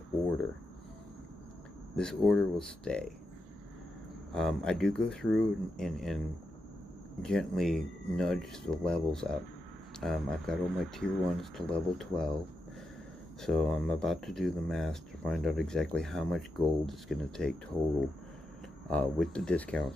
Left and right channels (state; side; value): normal; both; correlation 0.86